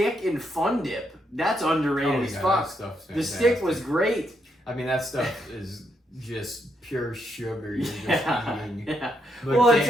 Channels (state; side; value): normal; both; correlation 0.78